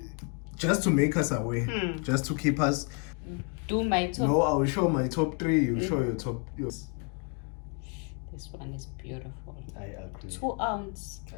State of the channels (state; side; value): quieter; right; 36.1 dB